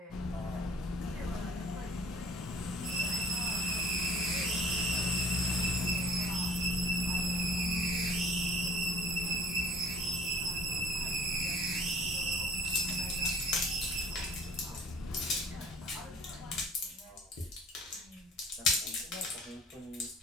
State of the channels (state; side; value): normal; both; correlation 0.50